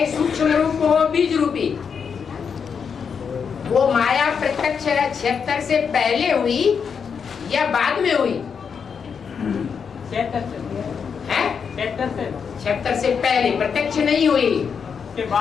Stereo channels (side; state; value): right; quieter; 6.4 dB